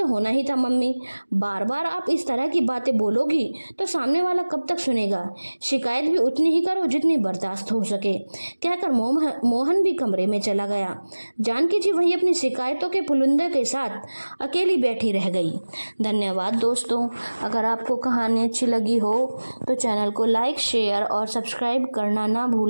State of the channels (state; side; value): inverted; both; correlation -1.00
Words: होना ही था मम्मी, बार बार आप इस तरह की बातें बोलोगी तो सामने वाला कब तक सुनेगा। शिकायत भी उतनी ही करो जितनी बर्दाश्त हो सके, कहकर मोहन भी कमरे में चला गया। जानकी जी वहीं अपनी शिकायतों के पुलिंदे के साथ अकेली बैठी रह गई। धन्यवाद दोस्तों। अगर आपको कहानी अच्छी लगी हो तो चैनल को लाइक, शेयर और सब्सक्राइब करना ना